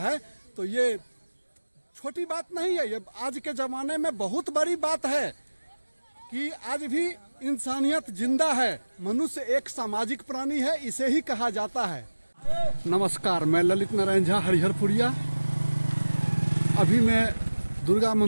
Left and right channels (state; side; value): inverted; both; correlation -1.00